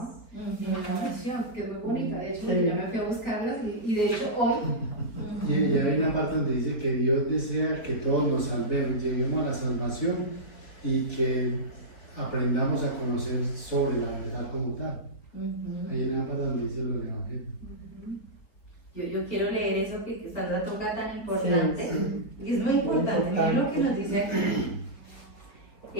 en la oración, que es muy bonita. De hecho, yo ya me fui a buscarlas y de hecho hoy. Y hay una parte donde dice que Dios desea que todos nos salvemos, lleguemos a la salvación y que aprendamos a conocer sobre la verdad como tal. Hay una parte donde dice lo del Evangelio. Yo quiero leer eso que Sandra toca tan importante, y es muy importante. Miren lo que nos dice aquí.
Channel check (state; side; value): late; right; 4.6 ms